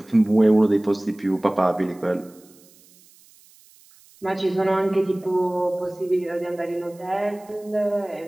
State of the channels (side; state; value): right; noise; hiss, 28 dB below the sound